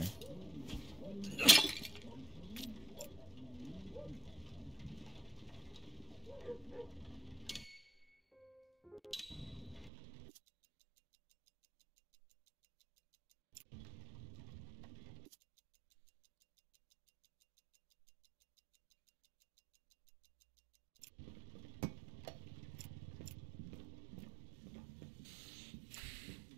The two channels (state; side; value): drops out; left; at 9.9 s